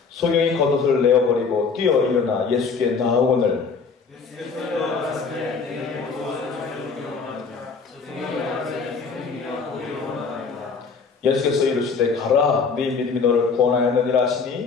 소경이 겉옷을 내어버리고 뛰어 일어나 예수께 나아오거늘 예수께서 일어나시되 내게 무엇을 전해주기 원하느냐 소경이 나가되 주님이여 보기를 원하나이다. 예수께서 이르시되 가라 네 믿음이 너를 구원하였느니라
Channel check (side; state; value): right; quieter; 5.1 dB